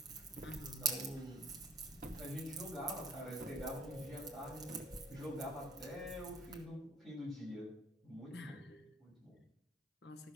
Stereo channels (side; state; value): both; normal; correlation 0.53